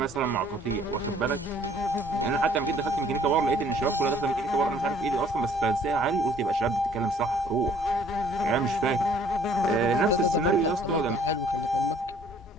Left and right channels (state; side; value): normal; both; correlation 0.58